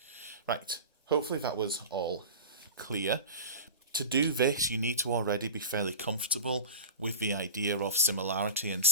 Right, hopefully that was all clear. To do this, you need to already be fairly comfortable with the idea of similarity and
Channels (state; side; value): inverted; both; correlation -0.34